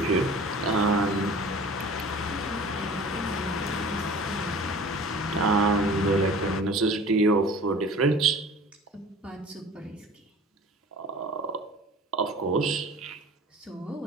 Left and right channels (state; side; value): normal; both; correlation 0.43